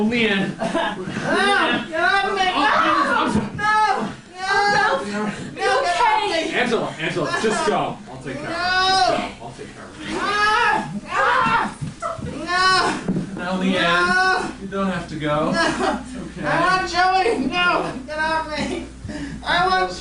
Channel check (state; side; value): identical; both; correlation 1.00